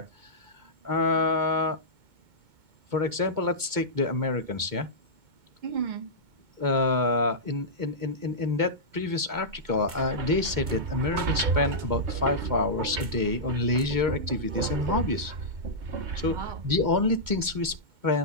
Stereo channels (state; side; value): late; left; 2.2 ms